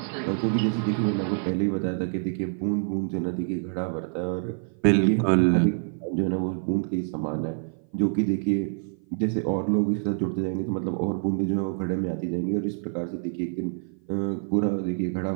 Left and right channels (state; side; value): silent; left; 55 dB below the other